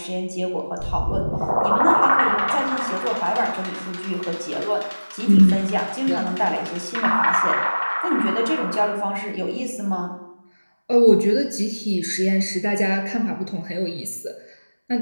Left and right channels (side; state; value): both; inverted; correlation -1.00